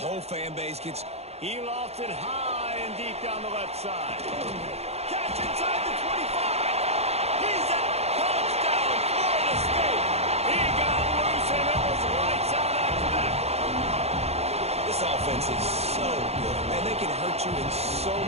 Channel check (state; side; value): late; left; 0.31 ms